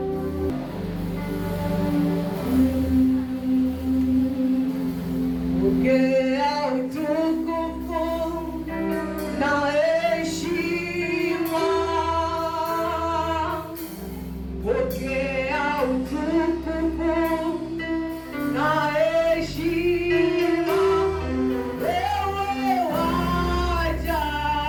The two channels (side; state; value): both; identical; correlation 1.00